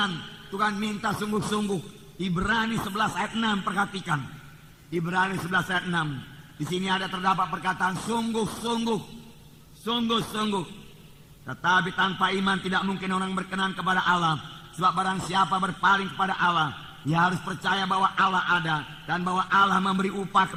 Tuhan minta sungguh-sungguh. Ibrani 11 ayat 6, perhatikan. Ibrani 11 ayat 6. Di sini ada terdapat perkataan sungguh-sungguh. Tetapi tanpa iman tidak mungkin orang berkenan kepada Allah. Sebab barang siapa berpaling kepada Allah, ia harus percaya bahwa Allah ada dan bahwa Allah memberi upah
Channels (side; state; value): both; identical; correlation 1.00